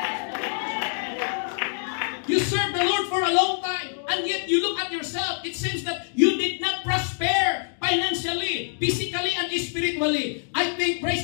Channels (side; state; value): right; silent; digital silence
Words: You serve the Lord for a long time, and yet you look at yourself, it seems that you did not prosper financially, physically, and spiritually. I think, praise